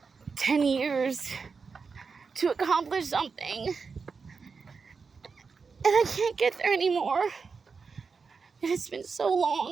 10 years to accomplish something, I can't get there anymore. And it's been so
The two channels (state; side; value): quieter; left; 5.1 dB